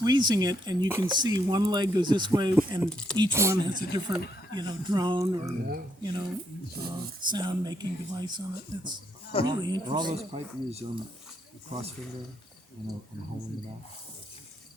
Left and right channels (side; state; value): both; normal; correlation 0.75